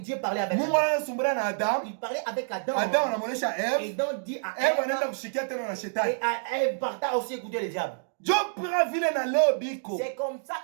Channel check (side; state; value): left; silent; digital silence